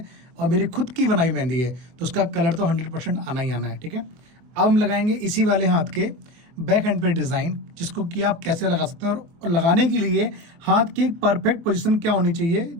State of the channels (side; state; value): left; late; 24 ms